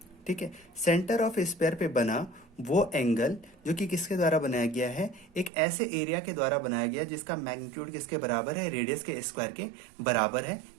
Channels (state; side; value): drops out; left; at 5.5 s